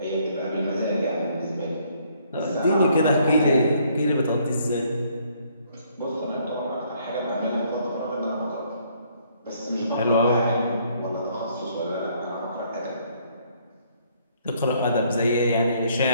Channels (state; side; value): inverted; both; correlation -0.66